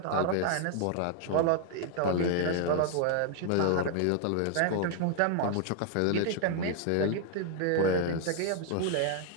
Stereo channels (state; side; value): different; both; correlation 0.00